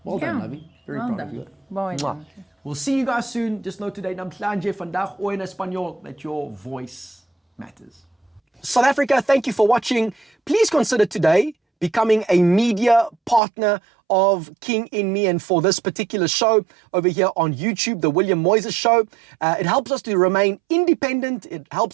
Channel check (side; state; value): left; drops out; at 13.4 s